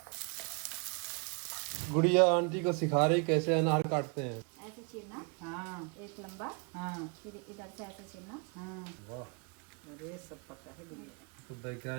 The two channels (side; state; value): left; quieter; 35.8 dB